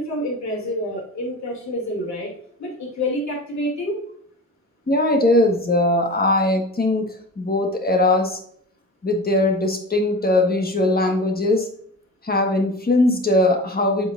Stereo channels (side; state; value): both; normal; correlation 0.33